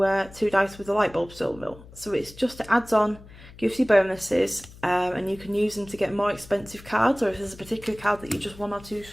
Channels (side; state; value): left; noise; hum, 20 dB below the sound